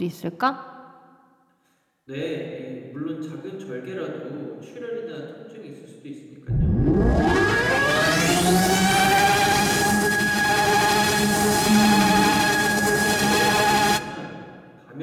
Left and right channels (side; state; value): both; identical; correlation 1.00